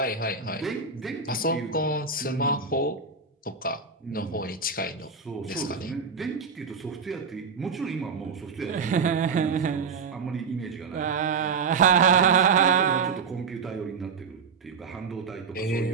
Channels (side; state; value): left; quieter; 5.4 dB